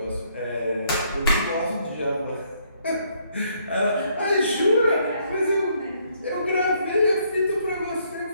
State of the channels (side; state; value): both; inverted; correlation -0.69